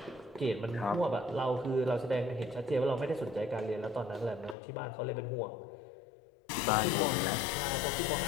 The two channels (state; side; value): drops out; right; at 4.5 s